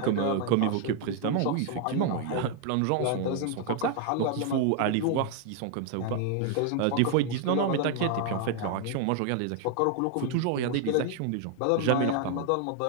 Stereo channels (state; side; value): different; both; correlation 0.00